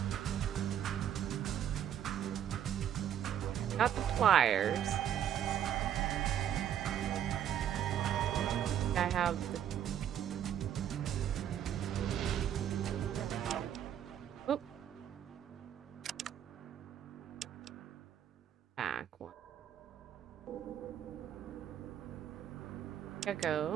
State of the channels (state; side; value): quieter; left; 10.0 dB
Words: Got the pliers. I have the... Oop. Back one.